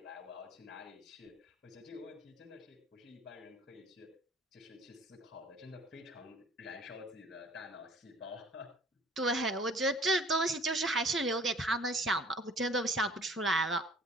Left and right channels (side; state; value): both; normal; correlation 0.52